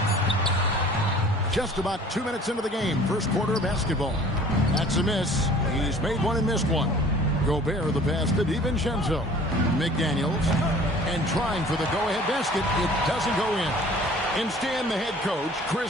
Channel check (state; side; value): normal; both; correlation 0.49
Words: Just about 2 minutes into the game. First quarter of basketball. That's a miss. He's made one and missed one. Gobert the pass to DiVincenzo. McDaniels. And trying for the go-ahead basket. It doesn't go in. Instead, the head coach, Chris